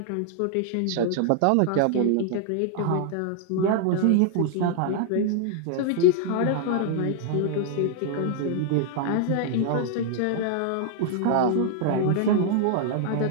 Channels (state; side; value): different; both; correlation 0.00